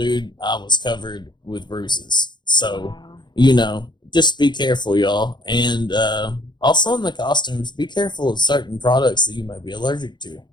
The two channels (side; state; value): right; late; 0.21 ms